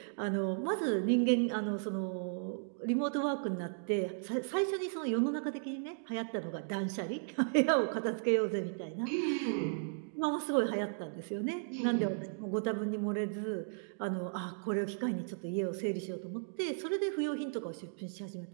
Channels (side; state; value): left; silent; digital silence